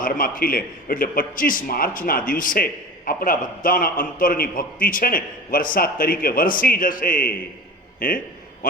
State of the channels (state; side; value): normal; both; correlation 0.35